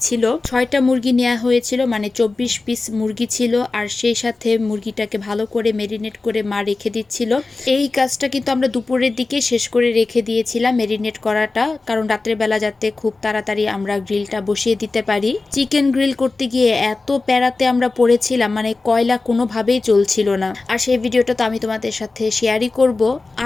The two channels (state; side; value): quieter; right; 3.6 dB